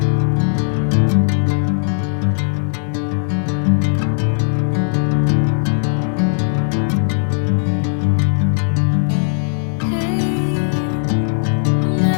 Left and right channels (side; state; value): right; silent; digital silence